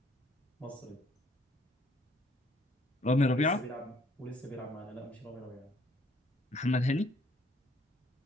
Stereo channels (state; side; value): normal; both; correlation 0.63